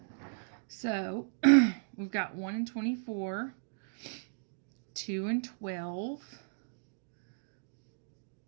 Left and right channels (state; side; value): silent; left; digital silence